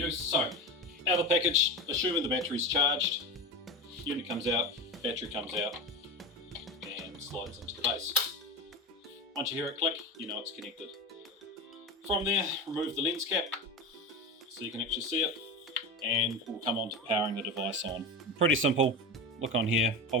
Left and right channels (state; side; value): normal; both; correlation 0.24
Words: So out of the package, assuming the battery's charged, unit comes out, battery comes out, and slides into the base. Once you hear it click, you know it's connected. From there, remove the lens cap so you can actually see it, and we'll come on to powering the device on. Pretty simple. Look on here,